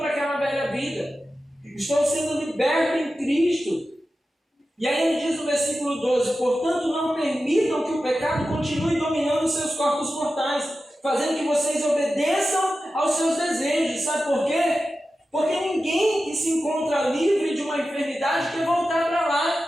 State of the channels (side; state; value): both; normal; correlation 0.93